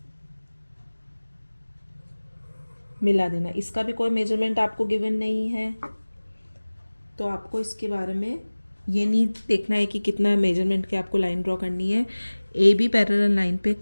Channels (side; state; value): both; inverted; correlation -1.00